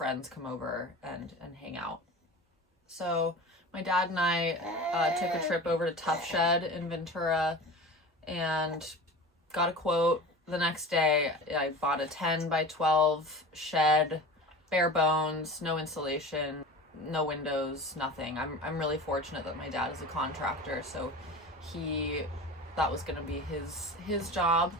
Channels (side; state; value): both; normal; correlation 0.34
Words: come over and hang out. So my dad and I took a trip over to Tough Shed in Ventura and got a quote. The next day I bought a 10 by 12 shed, bare bones, no insulation, no windows, nothing. I'm really fortunate that my dad is a contractor, so that was going to be his job.